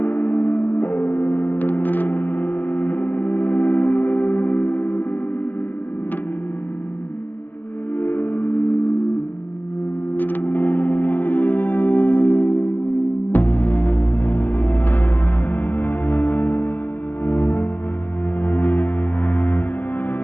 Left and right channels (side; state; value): right; late; 0.088 ms